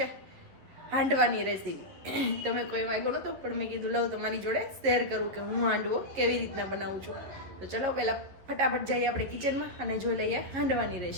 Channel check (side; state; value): left; late; 11 ms